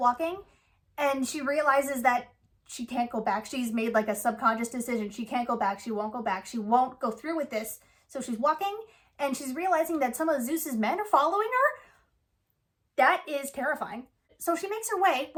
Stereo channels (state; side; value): identical; both; correlation 1.00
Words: And she realizes that she can't go back. She's made like a subconscious decision. She can't go back. She won't go back. She won't go through with this. So she's walking and she's realizing that some of Zeus's men are following her. That is terrifying. So she makes her way